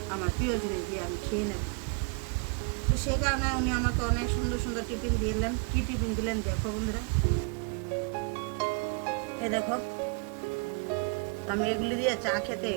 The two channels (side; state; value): left; quieter; 35.7 dB